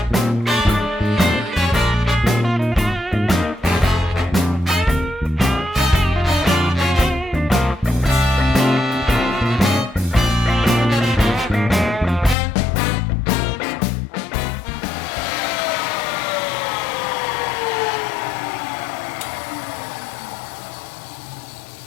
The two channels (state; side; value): drops out; right; at 12.4 s